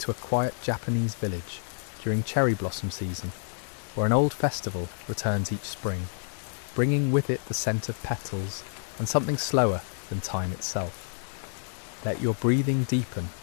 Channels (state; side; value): silent; right; digital silence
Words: a quiet Japanese village during cherry blossom season, where an old festival returns each spring, bringing with it the scent of petals and something slower than time itself. Let your breathing deepen,